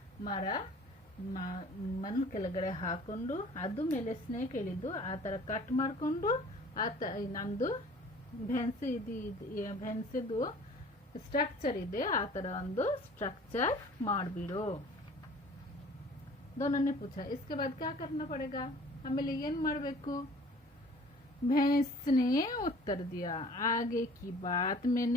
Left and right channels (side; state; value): both; normal; correlation 0.49